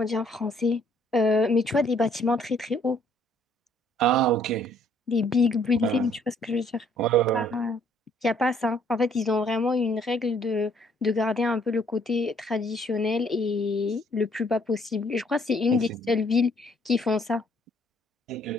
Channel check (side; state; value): both; normal; correlation 0.64